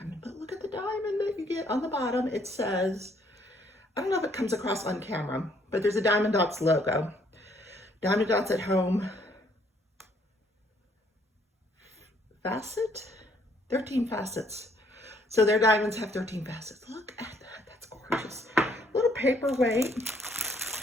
but look at the diamond that you get on the bottom. It says, I don't know if it comes across on camera, but there's a Diamond Dotz logo. Diamond Dotz at home. Facet? 13 facets. So their diamonds have 13 facets. Look at that. That's gorgeous. Little paperweight.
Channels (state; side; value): normal; both; correlation 0.66